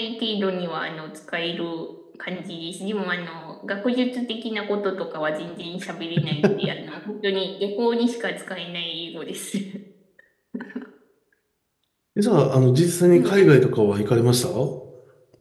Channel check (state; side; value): identical; both; correlation 1.00